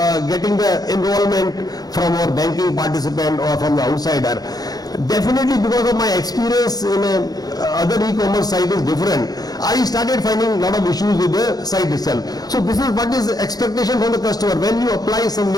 getting the enrollment from our banking participant or from the outsider? Definitely because of my experience in other e-commerce site is different. I started finding a lot of issues with the site itself. So this is what is expectation from the customer. When you apply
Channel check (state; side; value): late; right; 0.19 ms